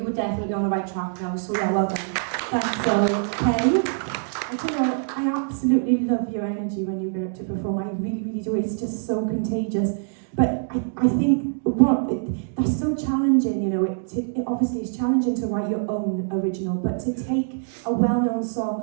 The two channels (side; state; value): left; silent; digital silence